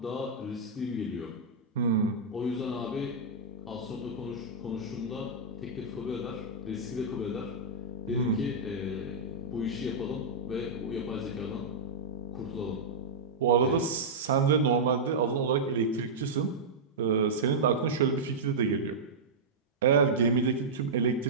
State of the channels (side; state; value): left; quieter; 3.4 dB